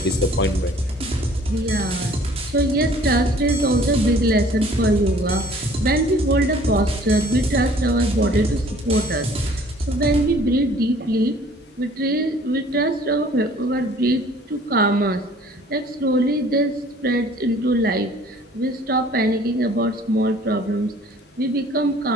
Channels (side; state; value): both; normal; correlation 0.54